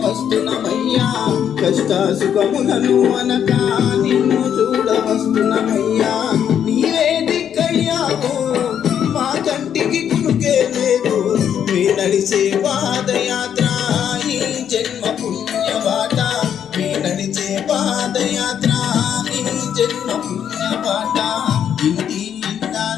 వస్తున్నమయ్యా, కష్ట సుఖములను అనగా నిన్ను చూడ వస్తున్నమయ్యా. నీవే దిక్కయ్యావు మా కంటికి కునుకే లేదు, మీ నడిచే పాదయాత్ర ఈ జన్మ పుణ్యబాట, మీ నడిచే పాదయాత్ర ఈ జన్మ పుణ్యబాట. ఇంటి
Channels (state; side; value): quieter; right; 9.0 dB